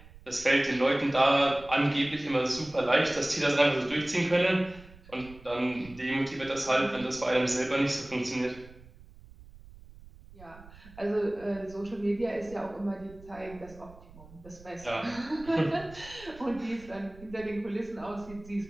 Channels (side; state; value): right; noise; rumble, 20 dB below the sound